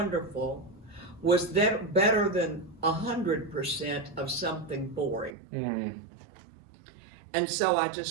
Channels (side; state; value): left; drops out; at 5.4 s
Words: was better than 100% of something boring. Mm-hmm. And so I